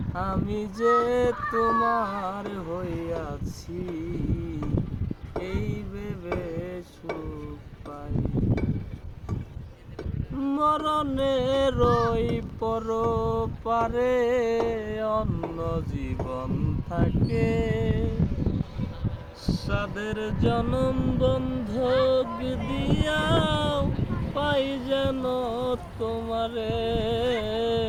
আমি যে তোমার হইয়াছি এই ভেবে সুখ পাই। মরণের ওই পরপারে অন্য জীবন থাকে, সাদের জনম বন্ধক দিয়াও পাই যেন তোমারে।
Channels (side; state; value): both; identical; correlation 1.00